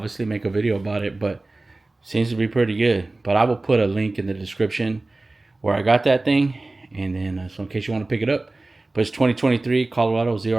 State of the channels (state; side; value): quieter; left; 3.0 dB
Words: make a video about it, but seems to be pretty good. But I will put a link in the description where I got that thing, and then so in case you want to pick it up. But it's 2023 Colorado